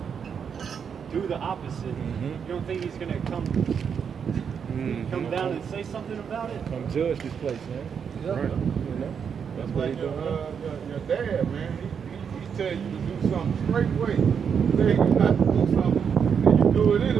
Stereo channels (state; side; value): quieter; left; 7.0 dB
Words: do the opposite. You don't think he's gonna come down and say something about it? Come judge this place, man. Right. You know? That's what Like he's doing. your dad, man, he tell you to do something straight way. He tell you not to do something, and you do it